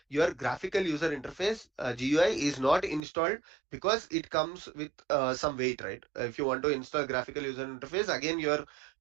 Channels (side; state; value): left; drops out; at 3.0 s